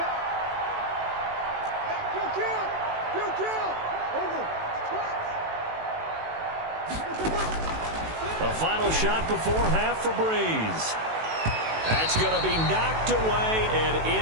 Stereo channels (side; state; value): left; late; 18 ms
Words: Hey, kill. Over. The final shot before half for Breeze. That's going to be knocked away and